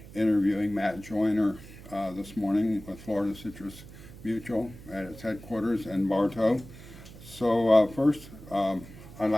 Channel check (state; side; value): noise; right; hum, 17 dB below the sound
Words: interviewing Matt Joyner this morning with Florida Citrus Mutual at its headquarters in Bartow. So first, I'd